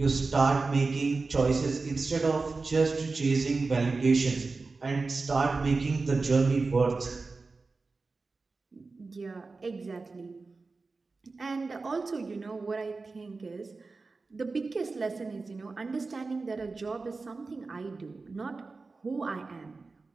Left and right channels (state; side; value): quieter; left; 3.9 dB